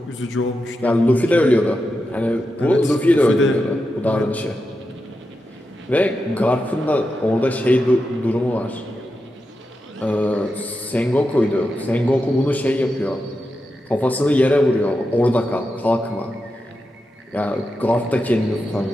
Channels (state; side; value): normal; both; correlation 0.88